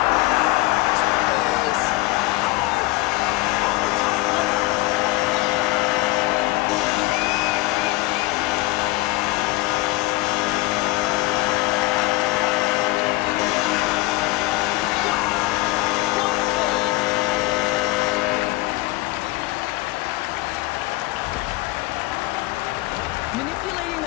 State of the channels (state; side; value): quieter; right; 20.3 dB